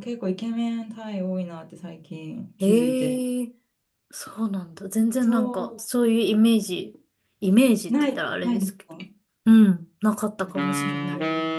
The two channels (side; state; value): both; identical; correlation 1.00